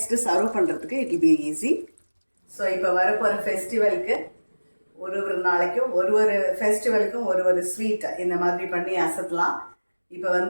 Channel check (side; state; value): both; inverted; correlation -1.00